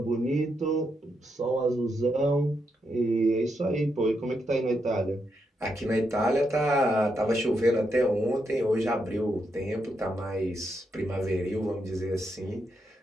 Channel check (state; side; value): normal; both; correlation 0.82